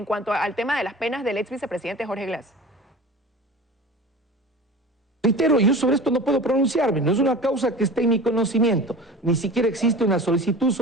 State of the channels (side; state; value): both; normal; correlation 0.37